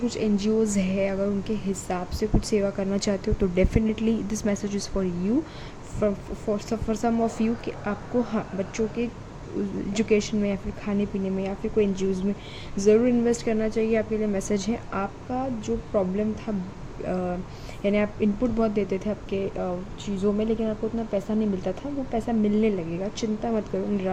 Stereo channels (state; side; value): identical; both; correlation 1.00